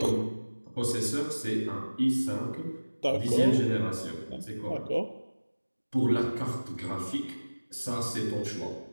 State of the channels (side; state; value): both; inverted; correlation -1.00